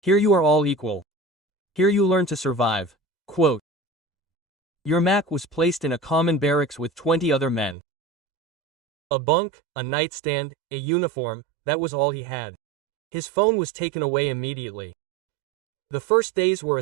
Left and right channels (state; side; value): drops out; left; at 7.8 s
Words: you are all equal. Here you learn to survive. Quote. Yermak was placed in a common barracks with 20 other men. A bunk, a nightstand, a uniform, that was all he had. His phone was taken away immediately. The first days were